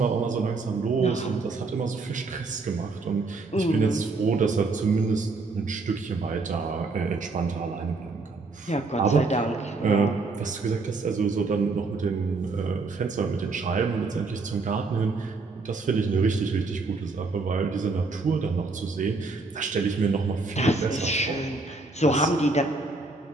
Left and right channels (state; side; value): quieter; left; 3.7 dB